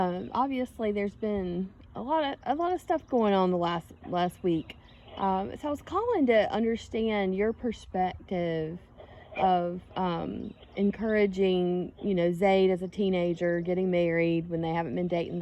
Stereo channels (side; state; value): both; identical; correlation 1.00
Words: there's been a lot of stuff going on the last week. So I was calling to understand your perspective of encouraging, Zaid as a teenager, getting married when they haven't been dating